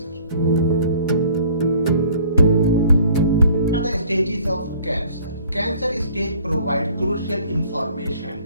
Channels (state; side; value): inverted; both; correlation -0.54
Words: What are the stages of cancer? Cancer stage provide crucial